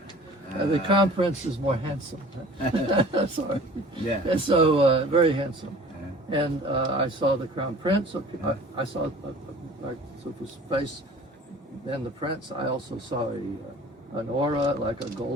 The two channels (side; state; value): both; normal; correlation 0.45